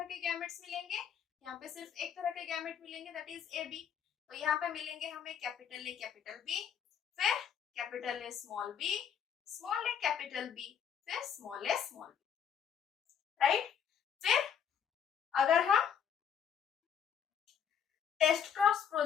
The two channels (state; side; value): quieter; right; 8.0 dB